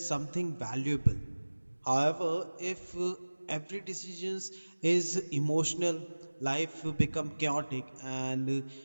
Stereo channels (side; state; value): both; inverted; correlation -1.00